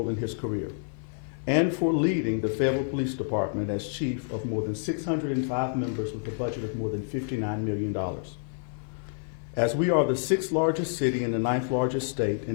in his career, and for leading the Fayetteville Police Department as chief of more than 605 members with a budget of more than $59 million. As we are the 6th largest city and the 9th largest state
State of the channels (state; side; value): silent; right; 59 dB below the other